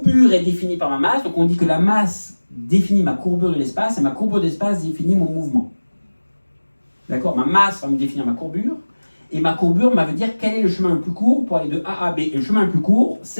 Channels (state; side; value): inverted; both; correlation -1.00